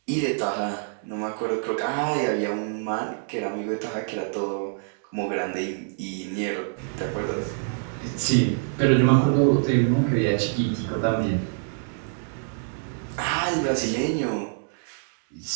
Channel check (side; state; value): left; silent; 61 dB below the other